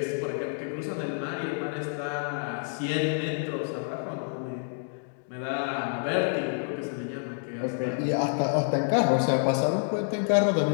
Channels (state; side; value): silent; right; digital silence